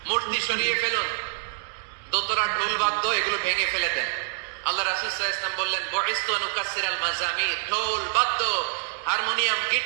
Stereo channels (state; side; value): silent; left; digital silence